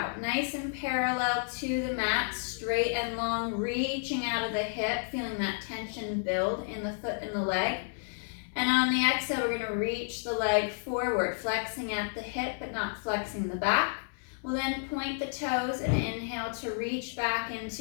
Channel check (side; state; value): right; silent; digital silence